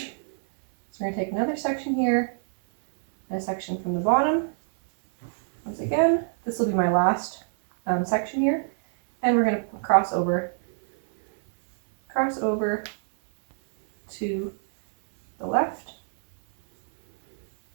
we're going to take another section here, and a section from the bottom. Once again, this will be my last section here. And we're going to cross over to the left,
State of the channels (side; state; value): left; silent; 59 dB below the other